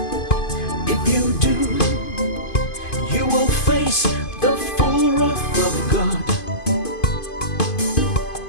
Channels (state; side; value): late; right; 2.5 ms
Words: If you do, you will face the full wrath of God.